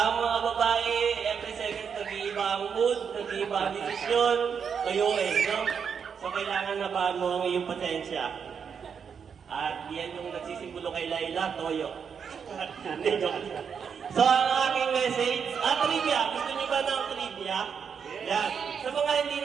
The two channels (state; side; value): quieter; left; 6.8 dB